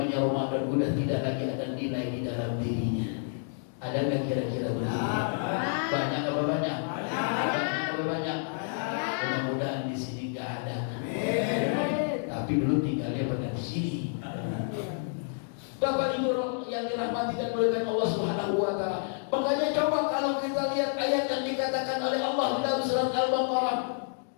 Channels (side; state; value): right; silent; digital silence